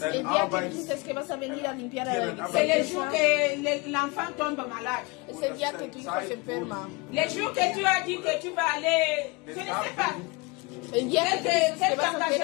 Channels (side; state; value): right; quieter; 26.5 dB